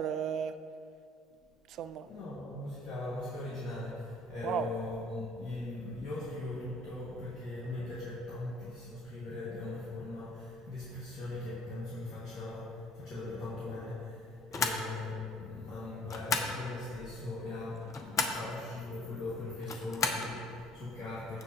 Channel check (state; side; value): normal; both; correlation 0.55